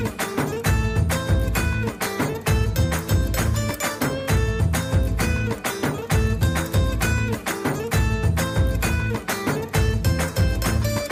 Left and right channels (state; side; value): identical; both; correlation 1.00